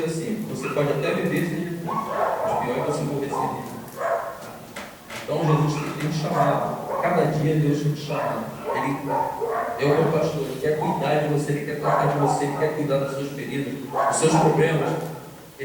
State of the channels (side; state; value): both; identical; correlation 1.00